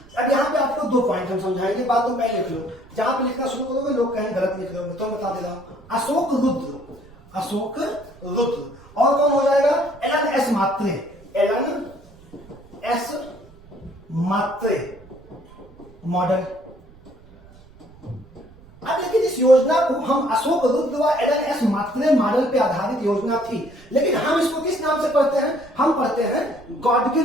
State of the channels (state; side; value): noise; right; rumble, 24 dB below the sound